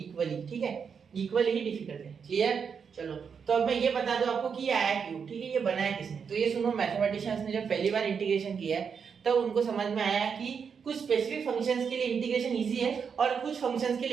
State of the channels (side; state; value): left; quieter; 6.5 dB